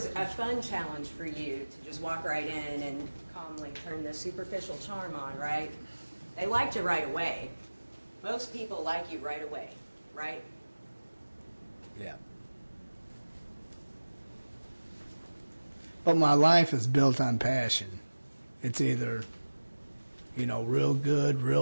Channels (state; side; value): inverted; both; correlation -1.00